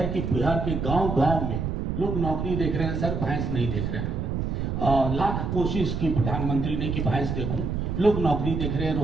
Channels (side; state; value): right; noise; rumble, 2 dB below the sound